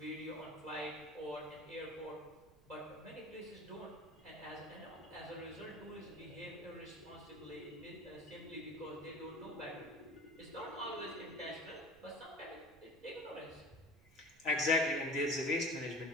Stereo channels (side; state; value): right; noise; rumble, 25 dB below the sound